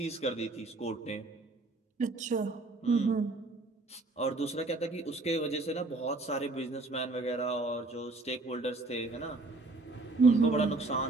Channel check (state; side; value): quieter; left; 3.2 dB